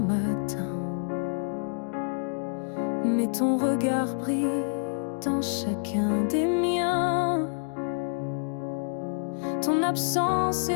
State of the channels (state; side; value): silent; right; digital silence